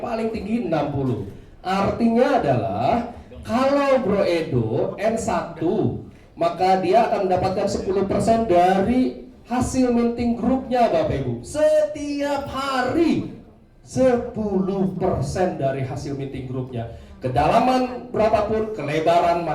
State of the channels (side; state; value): both; identical; correlation 1.00